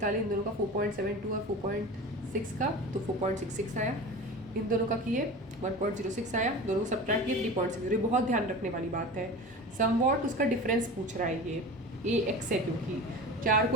इन दोनों का 4.72 और 4.6 का, तो 4.66 आया। इन दोनों का किए 1.06 आया, दोनों को सब्ट्रैक्ट किए 3.6। ये बहुत ध्यान रखने वाली बात है। समवॉट उसका डिफरेंस पूछ रहा है, ये ए एक्स है, क्योंकि 4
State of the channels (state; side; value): normal; both; correlation 0.33